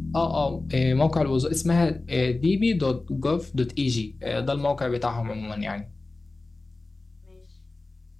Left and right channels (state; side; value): quieter; right; 3.2 dB